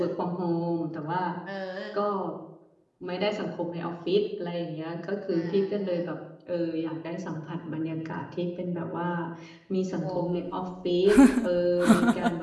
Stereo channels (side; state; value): both; identical; correlation 1.00